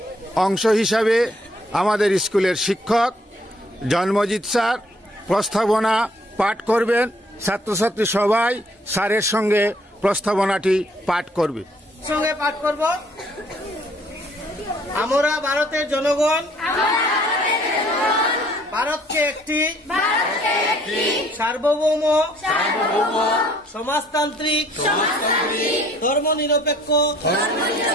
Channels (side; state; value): both; normal; correlation 0.61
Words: অংশ হিসাবে আমাদের স্কুলের শিক্ষক জন্মজিৎ স্যার প্রস্তাবনা পাঠ করবেন। ছাত্রছাত্রী সবাই স্যারের সঙ্গে প্রস্তাবনাটি পাঠ করবে। সঙ্গে পাঠ করব। আমরা ভারতের জনগণ ভারতকে একটি সার্বভৌম সমাজতান্ত্রিক ধর্মনিরপেক্ষ